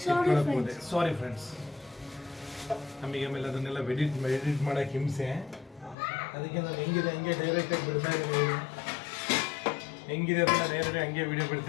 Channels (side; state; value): right; drops out; at 6.0 s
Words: ಸಾರಿ ಫ್ರೆಂಡ್ಸ್, ನಮಗೆ ಆಮೇಲೆ ಅದನ್ನೆಲ್ಲ ಎಡಿಟ್ ಮಾಡೋಕ್ಕೆ ಹಿಂಸೆ. ಅದಕ್ಕೆ ನಾನು ಹೆಂಗಿದೆ ಹಂಗೆ ಡೈರೆಕ್ಟಾಗಿ ಬಿಡ್ತಾ ಇದ್ದೀನಿ. ಹೆಂಗಿದೆ ಅದನ್ನು ಡೈರೆಕ್ಟಾಗಿ ಹಂಗೆ ವಿಡಿಯೋ